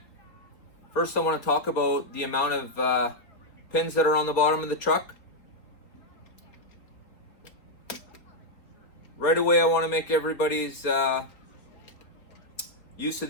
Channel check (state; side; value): late; right; 4.0 ms